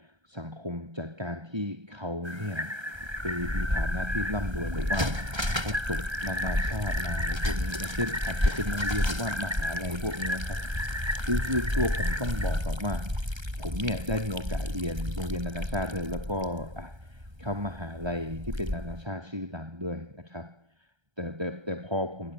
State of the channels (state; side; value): late; left; 1.3 ms